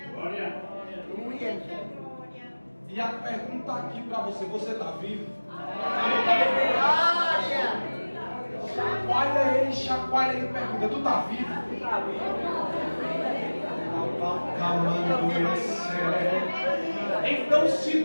E a pergunta aqui para você: você está vivo? Chacoalha ele e pergunta: tu está vivo? Então, se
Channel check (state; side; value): inverted; both; correlation -1.00